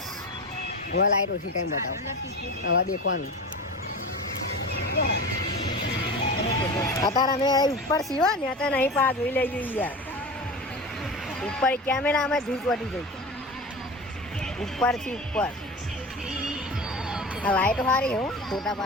હવે લાઈટ ઓછી ટાઈમ બતાવો હવે દેખવાનું. અત્યારે અમે ઉપર સીવો ને અત્યારે નહીં પા જોઈ લઈ જોઈએ યાર. ઉપર કેમેરા અમે ધૂપ વટી ગઈ ઉપર થી ઉપર. આ લાઈટ સારી હું ફોટા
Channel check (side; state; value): both; normal; correlation 0.30